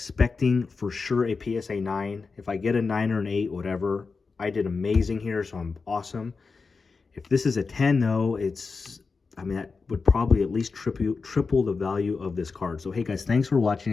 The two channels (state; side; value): quieter; right; 4.6 dB